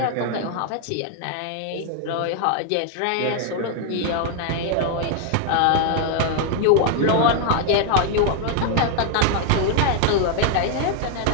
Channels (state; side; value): different; both; correlation 0.00